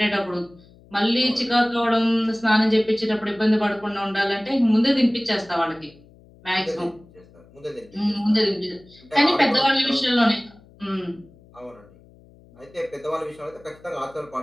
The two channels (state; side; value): noise; left; hum, 26 dB below the sound